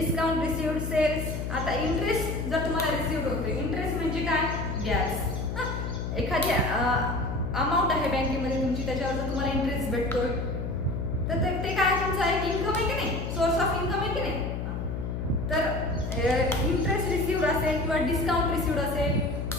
received, sales. आता इंटरेस्ट जर तुम्हाला रिसिव्ड होतोय, इंटरेस्ट म्हणजे काय, व्याज. एखादी अमाऊंट आहे बँकेमध्ये तुमची, त्याच्यावर जर तुम्हाला इंटरेस्ट भेटतोय तर ते काय तुमचं एक इन्कम आहे की नाही, सोर्स ऑफ इन्कम आहे की नाही. तर इंटरेस्ट रिसिव्ड असेल किंवा डिस्काउंट रिसिव्ड असेल.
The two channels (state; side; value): noise; left; hum, 3 dB below the sound